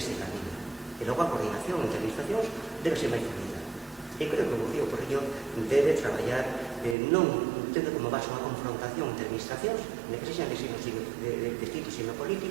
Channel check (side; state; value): left; drops out; at 7.0 s